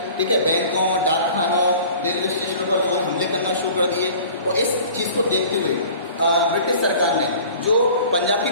ठीक है, बैंकों, डाकखानों, रेलवे स्टेशनों पर लोगों ने हमले करना शुरू कर दिए। और इस चीज़ को देखते हुए ब्रिटिश सरकार ने जो पंजाब की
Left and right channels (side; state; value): both; inverted; correlation -0.46